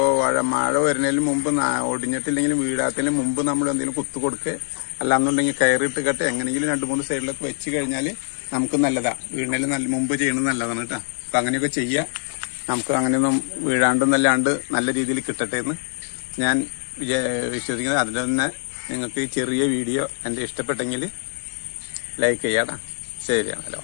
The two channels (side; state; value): right; silent; 63 dB below the other